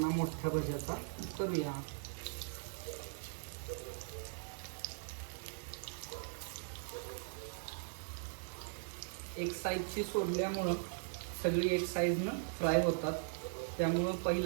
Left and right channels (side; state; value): left; silent; digital silence